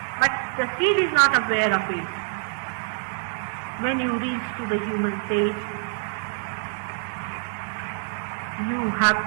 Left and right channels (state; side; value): silent; left; 61 dB below the other